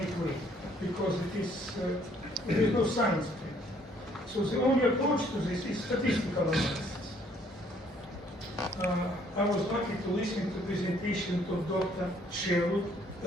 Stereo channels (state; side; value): normal; both; correlation 0.63